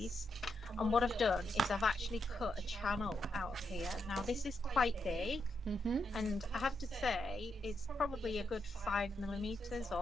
and what I've done is I've actually cut a channel out of here. Now this is quite big, and I have to say it's probably a good 5mm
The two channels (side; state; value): both; normal; correlation 0.82